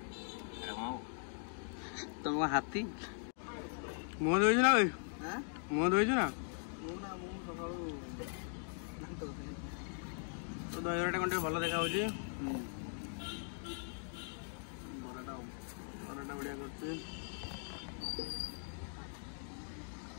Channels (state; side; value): silent; right; 51 dB below the other